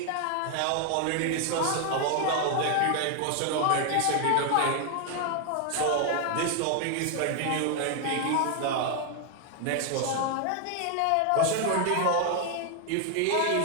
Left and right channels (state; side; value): different; both; correlation 0.00